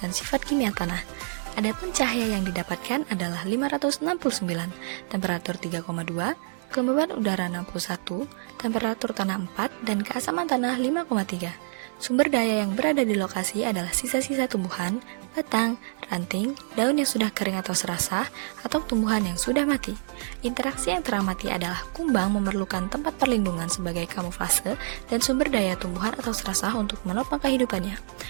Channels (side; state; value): left; silent; 60 dB below the other